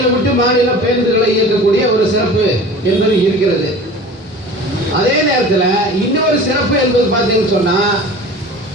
விட்டு மாநிலம் பேருந்துகளை இயக்கக்கூடிய ஒரு சிறப்பு என்பது இருக்கிறது. அதே நேரத்தில் இன்னொரு சிறப்பு என்பது பார்த்தீங்கன்னு சொன்னா,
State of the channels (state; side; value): normal; both; correlation 0.40